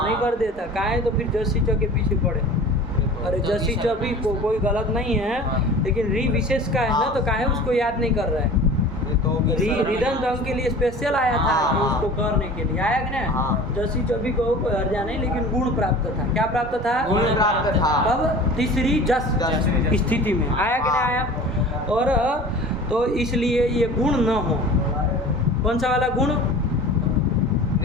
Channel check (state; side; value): normal; both; correlation 0.40